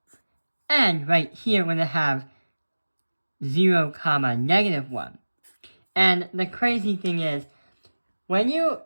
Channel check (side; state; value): both; inverted; correlation -1.00